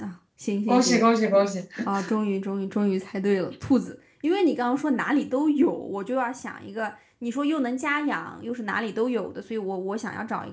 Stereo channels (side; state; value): both; identical; correlation 1.00